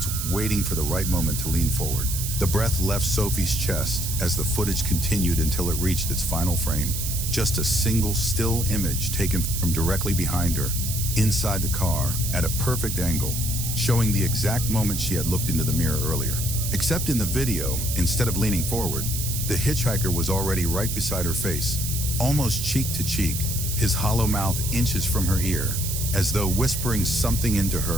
waiting for the right moment to lean forward. The breath left Sophie's chest as the footage continued until it reached its final frame, just a single still image taken from directly behind her, inside the car, at a perfect angle, showing the exact moment she had looked into the mirror earlier. Except in the video, instead of leaning forward, the hitchhiker was already right beside her face, almost cheek to cheek, his hollow mouth inches from her ear, as though whispering something into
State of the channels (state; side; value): noise; right; hiss, 4 dB below the sound